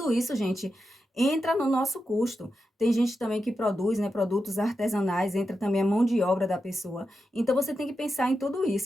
isso, gente, entra no nosso custo. Tem gente também que produz, né, produtos artesanais, entra também a mão de obra da pessoa. Então, você tem que pensar em tudo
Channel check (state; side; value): normal; both; correlation 0.88